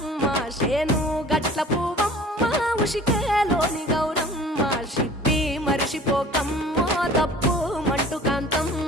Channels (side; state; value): both; normal; correlation 0.46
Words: శేను గట్ల పువ్వమ్మ ఉషికేలోని గౌరమ్మ షిప్పి మరిషిపోకమ్మ తప్పు మంటు